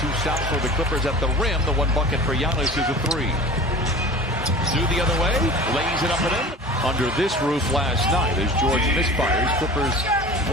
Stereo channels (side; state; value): both; normal; correlation 0.39